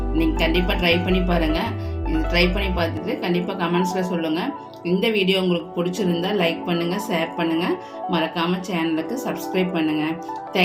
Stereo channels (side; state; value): both; identical; correlation 1.00